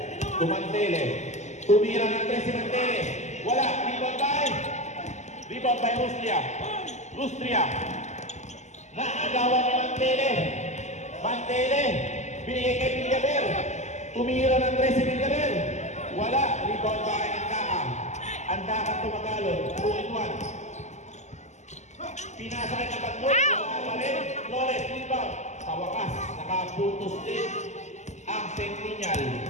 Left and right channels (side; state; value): right; late; 0.33 ms